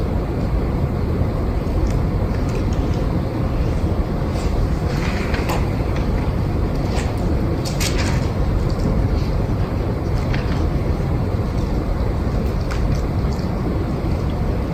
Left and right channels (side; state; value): both; identical; correlation 1.00